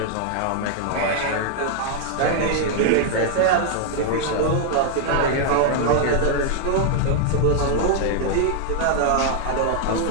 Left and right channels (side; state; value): both; different; correlation 0.00